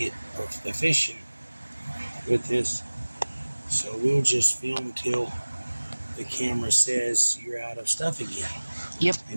efficient with this. So we'll just film till the camera says you're out of stuff again. Yep.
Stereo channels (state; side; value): inverted; both; correlation -1.00